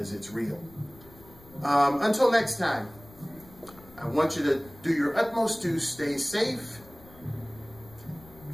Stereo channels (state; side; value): noise; left; rumble, 23 dB below the sound